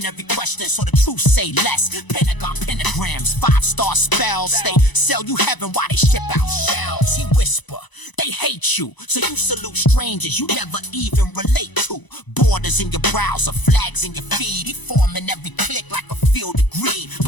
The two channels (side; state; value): right; late; 1.0 ms